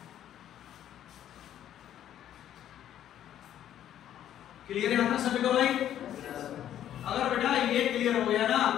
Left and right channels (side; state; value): right; quieter; 11.1 dB